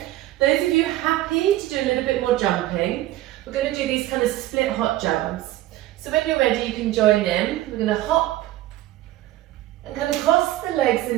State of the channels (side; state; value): left; quieter; 15.2 dB